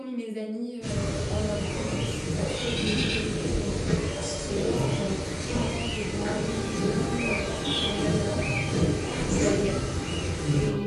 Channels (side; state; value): both; identical; correlation 1.00